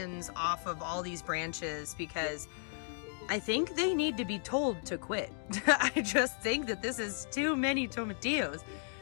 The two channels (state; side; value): silent; right; 55 dB below the other